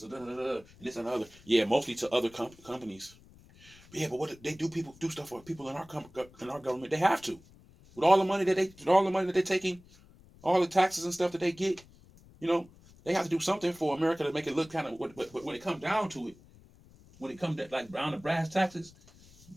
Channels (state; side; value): noise; left; rumble, 25 dB below the sound